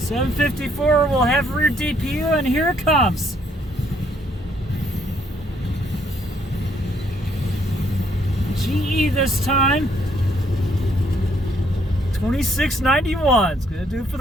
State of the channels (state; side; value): normal; both; correlation 0.68